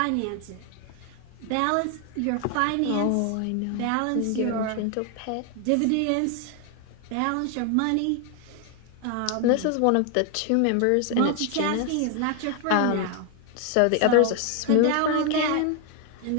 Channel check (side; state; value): both; different; correlation 0.00